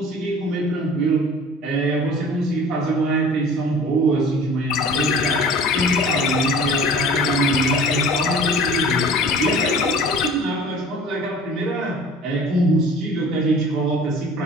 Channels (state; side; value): normal; both; correlation 0.45